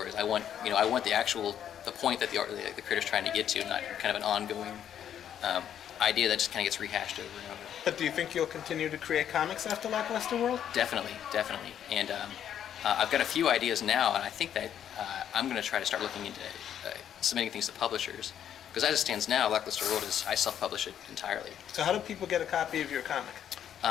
I want the point that the creator's trying to get to, not kind of an ongoing idea that just kind of gets rehashed over and over. But do you think you'll continue to create comics after Lackluster World? Definitely. And I've got a few ideas now, and I think that I'm going to try to start looking into submitting things to publishers. Because as it stands now, Lackluster World I self-publish it entirely. So how do people get a copy of your comic?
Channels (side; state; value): right; quieter; 9.7 dB